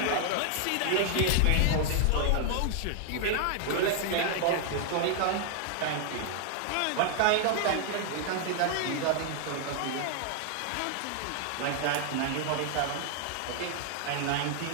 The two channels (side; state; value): both; different; correlation 0.00